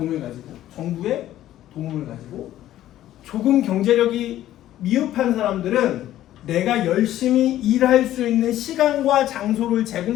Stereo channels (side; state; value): right; quieter; 13.2 dB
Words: 가지고 정부의 도움을 가지고 조금 경제력이 미흡한 사람들은 내가 열심히 일할 수 있는 시간과 장소를